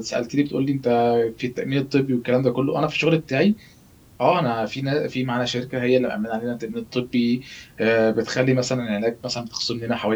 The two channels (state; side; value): identical; both; correlation 1.00